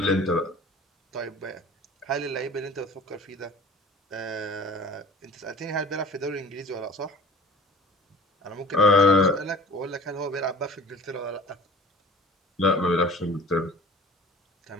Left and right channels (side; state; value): both; normal; correlation 0.43